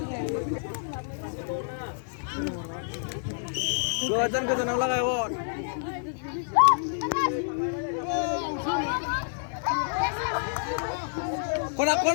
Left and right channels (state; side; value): silent; right; digital silence